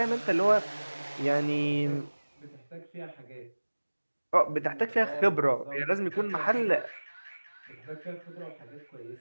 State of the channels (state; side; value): inverted; both; correlation -1.00